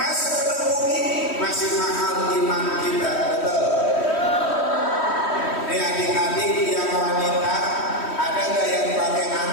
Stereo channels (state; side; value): late; right; 3.1 ms